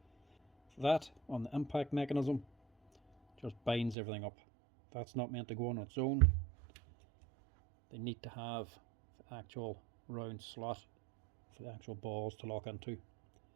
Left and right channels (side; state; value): left; drops out; at 4.0 s